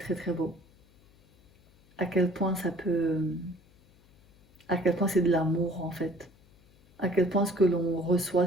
très beau. À quel point à quel point c'est de l'amour en fait. À quel point ce que l'on reçoit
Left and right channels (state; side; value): noise; left; hum, 29 dB below the sound